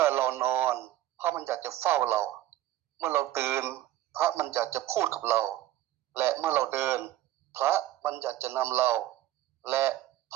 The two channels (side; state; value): left; quieter; 14.1 dB